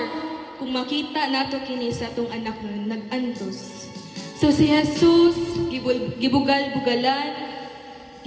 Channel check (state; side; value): identical; both; correlation 1.00